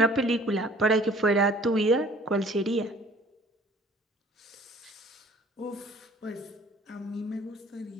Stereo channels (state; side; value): normal; both; correlation 0.53